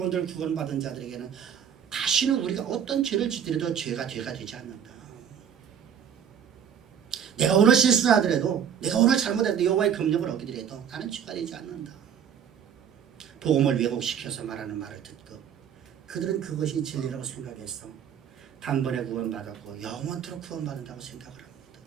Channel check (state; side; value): quieter; left; 8.4 dB